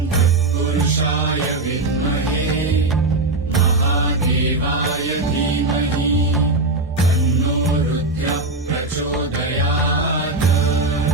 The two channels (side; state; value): left; quieter; 3.0 dB